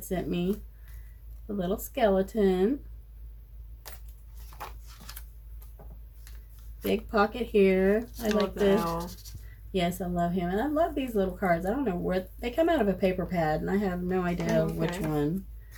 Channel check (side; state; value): both; identical; correlation 1.00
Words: sent me. A little skeleton. Big pocket here. I like the Yes, I love him. And I love these little cards. I don't know where they come out of a paper pad, and I have no idea which one.